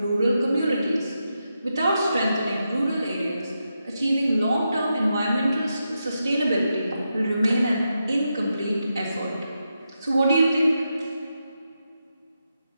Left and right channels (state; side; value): inverted; both; correlation -0.86